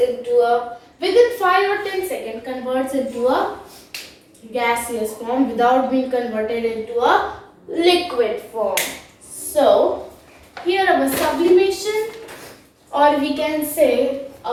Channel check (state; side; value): identical; both; correlation 1.00